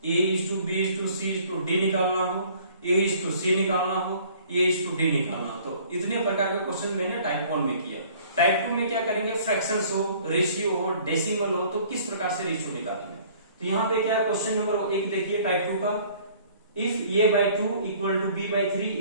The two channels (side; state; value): both; inverted; correlation -0.54